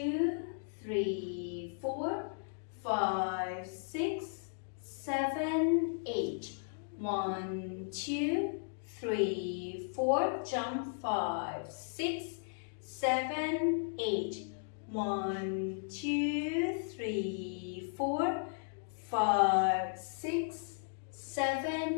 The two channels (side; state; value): right; silent; digital silence